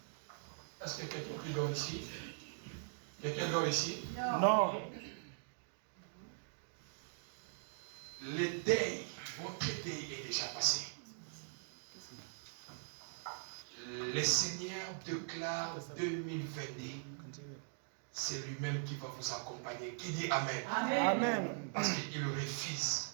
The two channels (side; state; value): left; silent; digital silence